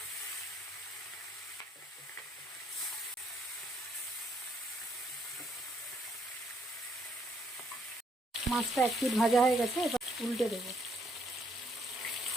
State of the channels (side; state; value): both; normal; correlation 0.70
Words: মাছটা এক পিঠ ভাজা হয়ে গেছে, এবার উল্টে দেবো।